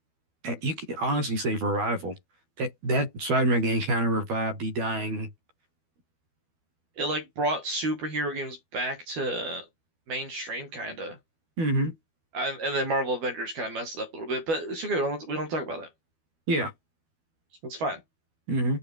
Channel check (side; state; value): left; late; 12 ms